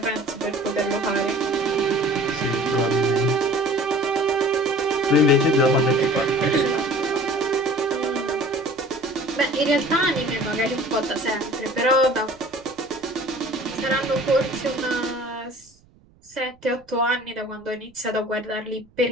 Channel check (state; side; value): noise; right; rumble, 30 dB below the sound